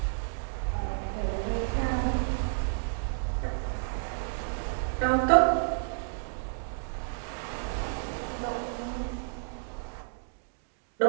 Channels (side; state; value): left; silent; digital silence